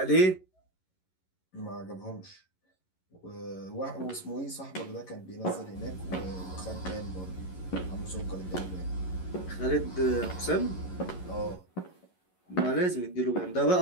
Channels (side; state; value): right; late; 11 ms